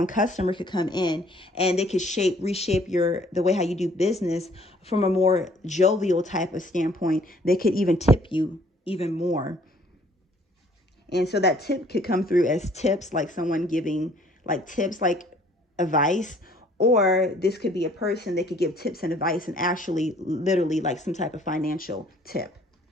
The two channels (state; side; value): normal; both; correlation 0.59